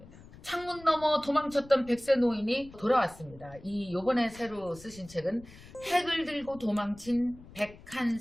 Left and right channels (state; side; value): noise; left; rumble, 20 dB below the sound